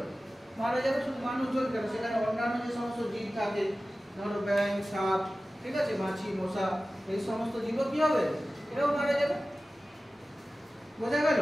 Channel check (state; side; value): normal; both; correlation 0.96